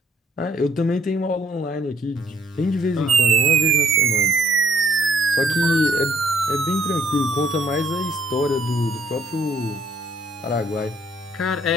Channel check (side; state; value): both; normal; correlation 0.64